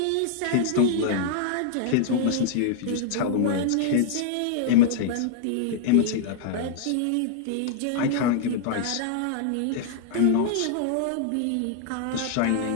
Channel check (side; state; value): both; different; correlation -0.01